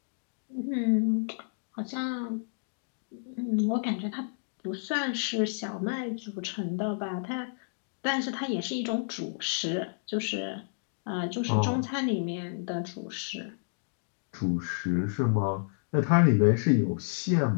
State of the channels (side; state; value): right; silent; digital silence